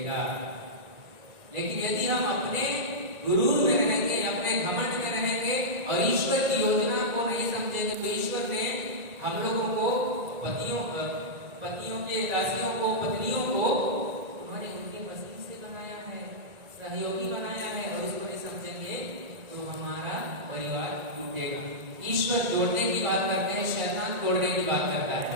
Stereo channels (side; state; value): left; late; 1.9 ms